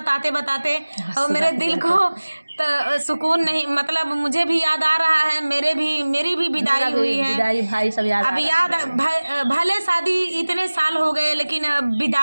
बताते। और मेरे दिल को तो सुकून नहीं, मतलब मुझे भी याद आ रहा है। मेरी भी विदाई हुई है। विदाई भाई सब याद अब याद भले शादी इतने साल हो गए, लेकिन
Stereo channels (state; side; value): inverted; both; correlation -1.00